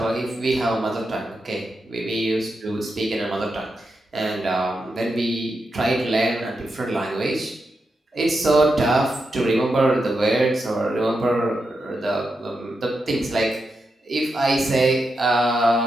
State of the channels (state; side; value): normal; both; correlation 0.87